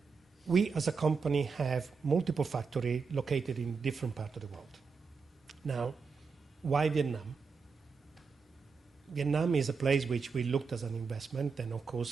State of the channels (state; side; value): quieter; left; 5.2 dB